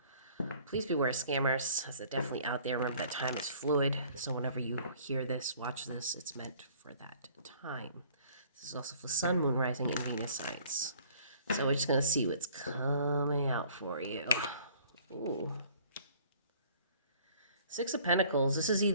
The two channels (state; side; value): inverted; both; correlation -0.55